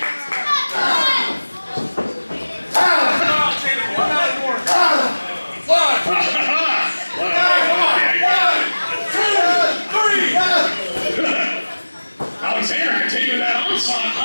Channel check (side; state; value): both; inverted; correlation -1.00